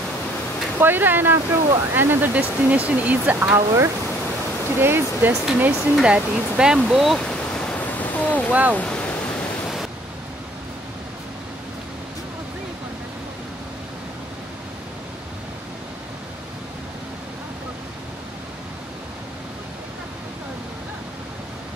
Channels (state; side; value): normal; both; correlation 0.58